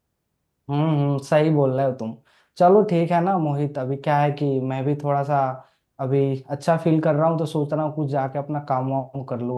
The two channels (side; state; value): both; identical; correlation 1.00